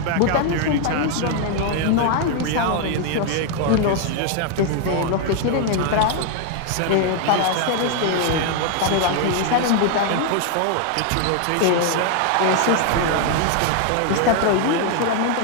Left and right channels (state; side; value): different; both; correlation 0.00